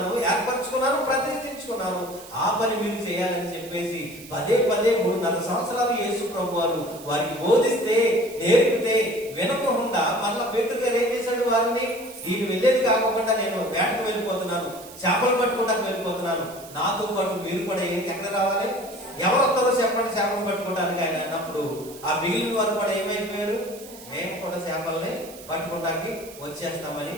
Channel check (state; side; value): noise; right; hiss, 18 dB below the sound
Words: ఏర్పరచుకున్నాను, ప్రతిష్ఠించుకున్నాను. ఆ పని మీరు చేయాలని చెప్పేసి పదే 3.5 సంవత్సరాలు యేసు ప్రభు వారు వారికి బోధిస్తే, నేర్పితే వినకుండా మళ్ళా పేతురు గారు ఏం చేశాడు? వారిని నేను వెళ్ళేది కాకుండా నేను వేటకు వెళ్ళిపోతున్నాను, చేపలు పట్టుకోవడానికి వెళ్ళిపోతున్నాను, నాతో పాటు మీరు కూడా ఎక్కడ రావాలి? ఎవరు వస్తారో చెప్పండి చేపలు పట్టుకోవడానికి ఆయన అన్నప్పుడు ఆ మిగిలిన వారు కూడా ఏమైపోయారు? మేము కూడా చేపల్ని పట్టుకోవడానికి వచ్చేస్తామని